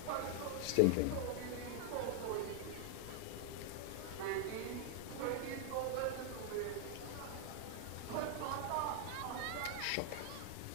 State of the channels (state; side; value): different; both; correlation 0.00